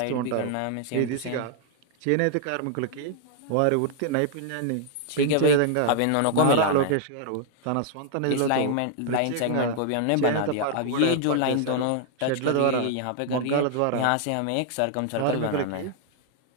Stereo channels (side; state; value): both; different; correlation 0.00